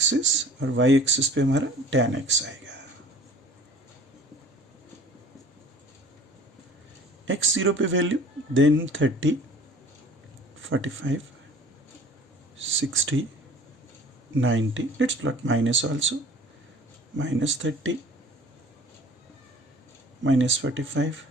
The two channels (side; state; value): both; normal; correlation 0.47